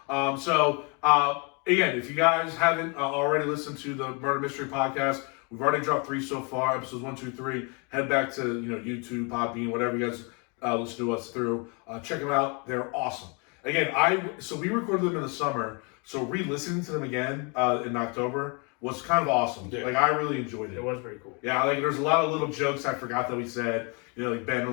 Again, if you guys haven't already listened to the Murder Mystery Podcast, we've already dropped 3 so far, episodes 1, 2, 3. Head back to YouTube, Podbean, whatever you guys listen to us through. Check them out; they're awesome. Again, we recorded them in the summer, so re-listening to them again in October was kind of awesome. Yeah. Like I really enjoyed it. It was pretty cool. Yeah, like there's a lot of little jokes I forgot that we said. Like Ben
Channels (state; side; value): quieter; right; 33.0 dB